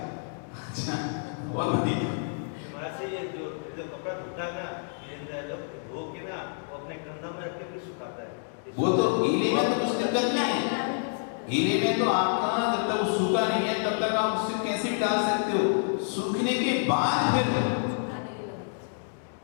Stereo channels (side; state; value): right; silent; digital silence